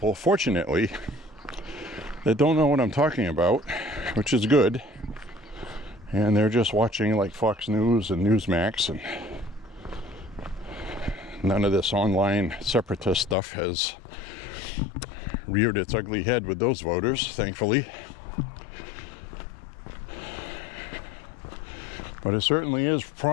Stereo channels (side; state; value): right; drops out; at 13.4 s